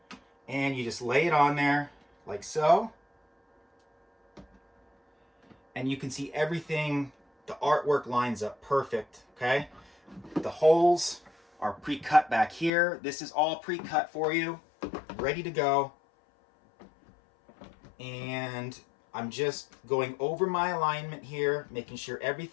and you just lay it on there like so. And you can see everything, the artwork lines up perfect, okay? The holes are pre-cut back here. This is all pre-cut for you, ready to go. And I'm just going over my alignment here, making sure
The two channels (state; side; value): drops out; right; at 12.7 s